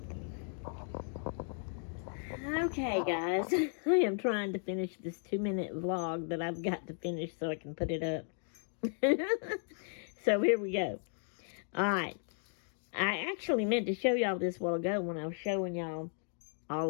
Okay, guys, I am trying to finish this 2-minute vlog that I've got to finish so I can put it up. So here we go. Alright, I actually meant to show y'all this a while ago when I was showing y'all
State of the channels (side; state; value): right; silent; 54 dB below the other